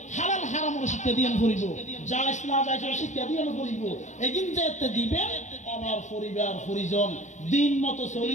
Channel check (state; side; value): late; right; 0.34 ms